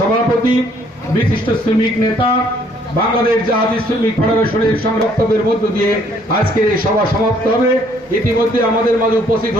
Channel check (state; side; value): normal; both; correlation 0.64